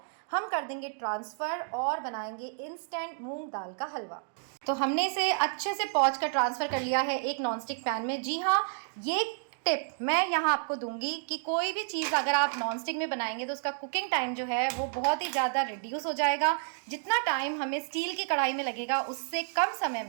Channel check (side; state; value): left; silent; digital silence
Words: हम कर देंगे ट्रांसफ़र और बनाएंगे इंस्टेंट मूंग दाल का हलवा। तो हमने इसे अच्छे से पोंछ कर ट्रांसफ़र कर लिया है एक नॉनस्टिक पैन में। जी हाँ, ये टिप मैं यहाँ आपको दूंगी कि कोई भी चीज़ अगर आप नॉनस्टिक में बनाएंगे तो उसका कुकिंग टाइम जो है वो बहुत ही ज़्यादा रिड्यूस हो जाएगा। जितना टाइम हमें स्टील की कढ़ाई में लगेगा उससे कम समय